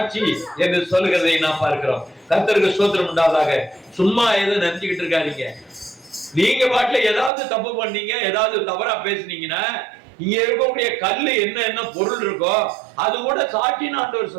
என்று சொல்லுகிறதை நாம் பார்க்கிறோம். கர்த்தருக்கு ஸ்தோத்திரம் உண்டாவதாக. சும்மா எதுவும் நினைச்சுக்கிட்டு இருக்காதீங்க. நீங்க பாட்டுல ஏதாவது தப்பு பண்ணீங்க, ஏதாவது தவறா பேசுனீங்கன்னா இங்க இருக்கக்கூடிய கல்லு என்ன பொருள் இருக்கோ அது கூட சாட்சின்னு ஆண்டவர்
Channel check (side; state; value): left; drops out; at 7.3 s